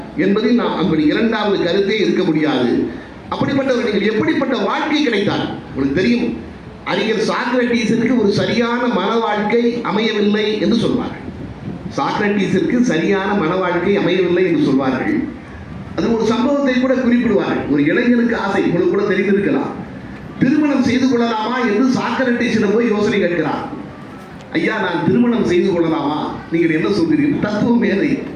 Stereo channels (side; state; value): both; identical; correlation 1.00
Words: என்பதில் நாம் அப்படி இரண்டாவது கருத்தே இருக்க முடியாது. அப்படிப்பட்டவர்கள் எப்படிப்பட்ட வாழ்க்கை கிடைத்தார் உங்களுக்கு தெரியும். அறிஞர் சாக்ரட்டீஸிற்கு ஒரு சரியான மன வாழ்க்கை அமையவில்லை என்று சொல்வார்கள். சாக்ரட்டீஸிற்கு சரியான மன வாழ்க்கை அமையவில்லை என்று சொல்வார்கள். அது ஒரு சம்பவத்தை கூட குறிப்பிடுவார்கள். ஒரு இளைஞனுக்கு ஆசை, உங்களுக்கு கூட தெரிந்திருக்கலாம், திருமணம் செய்து கொள்ளலாமா என்று சாக்ரட்டீஸிடம் போய் யோசனை கேட்கிறார். ஐயா, நான் திருமணம் செய்து கொள்ளலாமா, நீங்கள் என்ன சொல்கிறீர்கள்? தத்துவ மேதை.